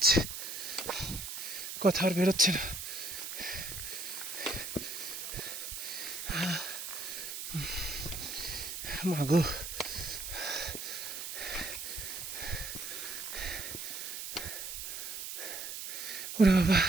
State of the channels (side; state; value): right; noise; hiss, 6 dB below the sound